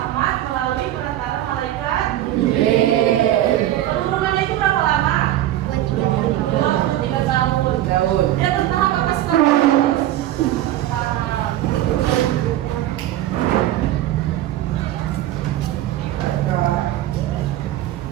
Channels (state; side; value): quieter; left; 13.7 dB